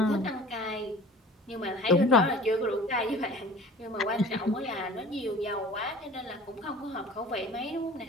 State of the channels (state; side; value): normal; both; correlation 0.44